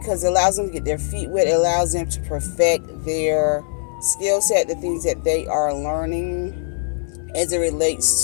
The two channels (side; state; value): right; silent; 57 dB below the other